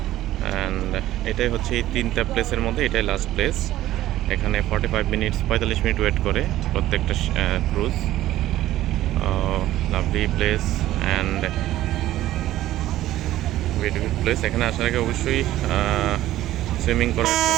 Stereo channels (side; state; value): left; quieter; 14.5 dB